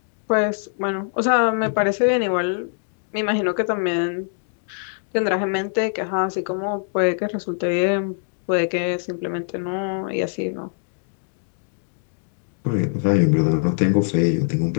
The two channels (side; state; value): right; silent; digital silence